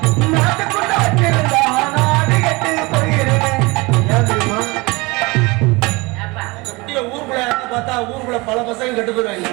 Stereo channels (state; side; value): quieter; left; 24.8 dB